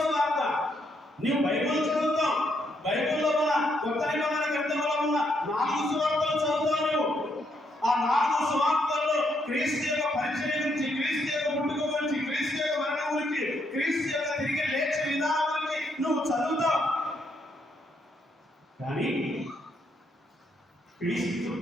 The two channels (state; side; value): normal; both; correlation 0.75